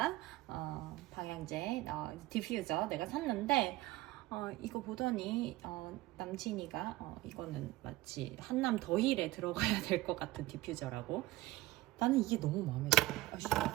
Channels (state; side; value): quieter; left; 18.0 dB